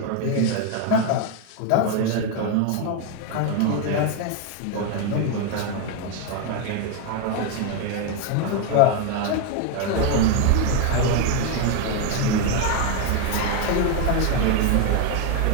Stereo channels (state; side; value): different; both; correlation 0.01